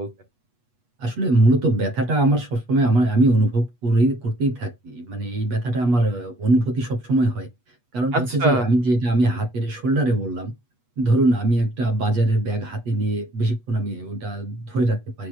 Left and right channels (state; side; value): late; left; 8.2 ms